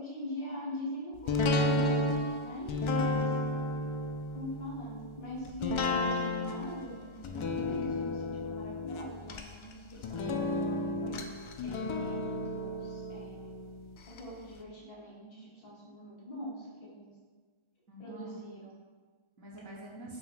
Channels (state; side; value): late; right; 1.4 ms